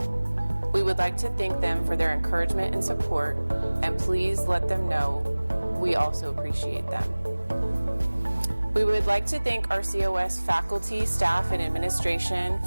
We would like to thank them for their encouragement and support, and please let them know we also appreciate them. We would like to thank our COS faculty, staff, and administration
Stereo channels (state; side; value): inverted; both; correlation -1.00